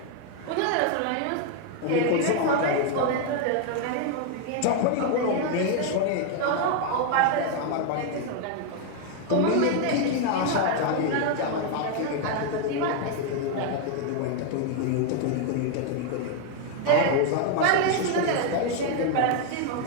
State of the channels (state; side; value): different; both; correlation 0.01